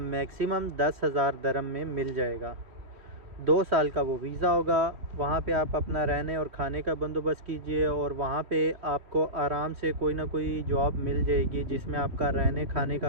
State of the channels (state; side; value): late; left; 3.1 ms